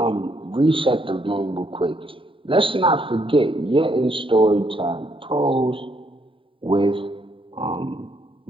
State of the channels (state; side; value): late; left; 0.25 ms